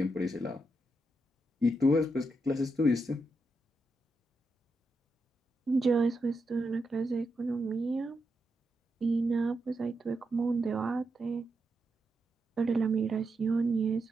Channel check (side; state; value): both; normal; correlation 0.84